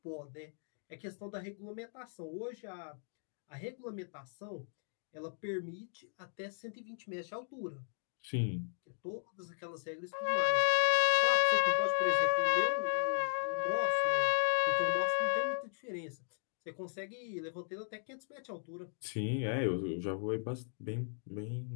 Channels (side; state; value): right; silent; 54 dB below the other